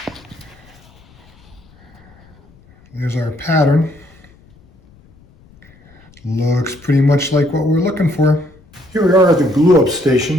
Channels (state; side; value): noise; left; rumble, 28 dB below the sound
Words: There's our pattern. Looks pretty much like what we're looking for. Here we are at the glue up